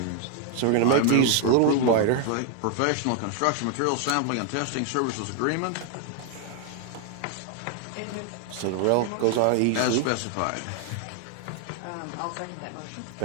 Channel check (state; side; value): different; both; correlation 0.00